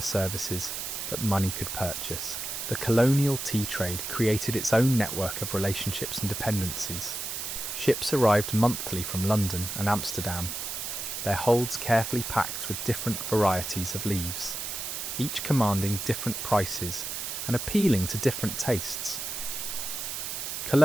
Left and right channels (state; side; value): noise; right; hiss, 5 dB below the sound